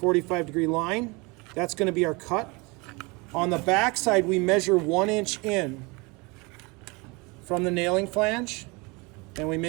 line. That's going to be our cut. On the back side, we measure 1 inch in from the nailing flange, and we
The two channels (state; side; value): quieter; left; 27.2 dB